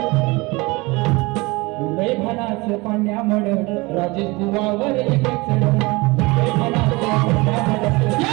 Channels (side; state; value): left; quieter; 24.1 dB